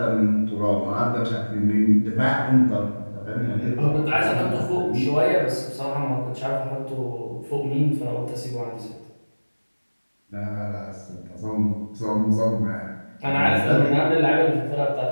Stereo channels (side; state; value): both; inverted; correlation -1.00